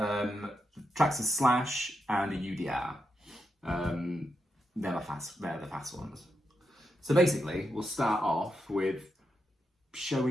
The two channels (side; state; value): both; normal; correlation 0.85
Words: Slash and a UDR. They're the fast ones. So basically, we'll start off with